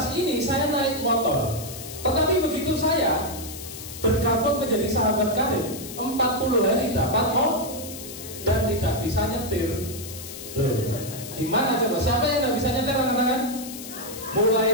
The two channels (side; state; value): left; noise; hiss, 12 dB below the sound